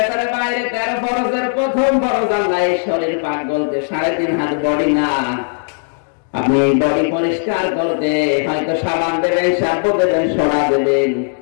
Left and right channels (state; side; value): silent; right; digital silence